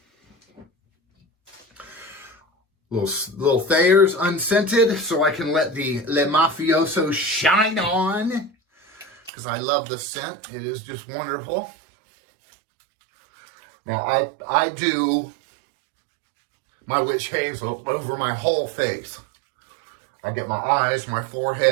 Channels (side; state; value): left; drops out; at 9.3 s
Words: Little Thayers unscented, so I can let the Le Mafioso shine on, because I love the scent. It is just wonderful. Now, I do my witch hazel over my whole face. I get my eyes, my